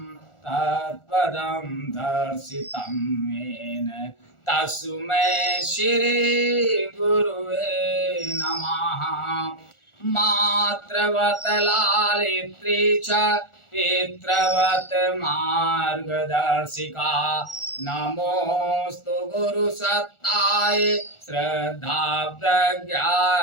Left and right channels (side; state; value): right; late; 1.4 ms